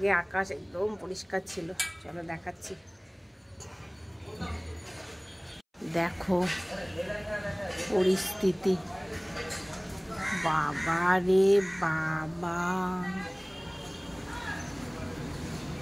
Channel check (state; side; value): identical; both; correlation 1.00